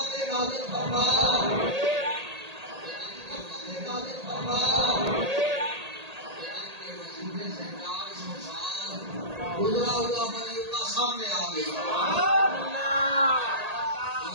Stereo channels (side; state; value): left; late; 1.8 ms